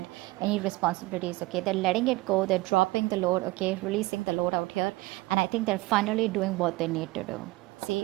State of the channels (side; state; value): left; quieter; 20.7 dB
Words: any responsibilities, okay? They're letting it go. They're dropping the load, okay? Releasing the load out here. And I think they're finally doing what they need to do.